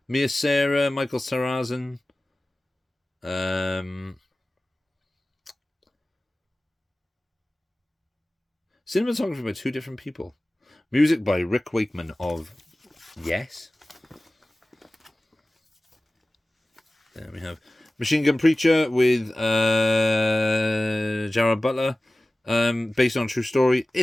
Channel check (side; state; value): both; normal; correlation 0.97